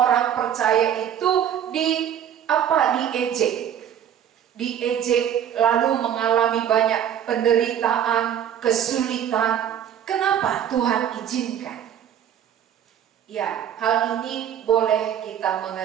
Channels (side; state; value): left; quieter; 9.5 dB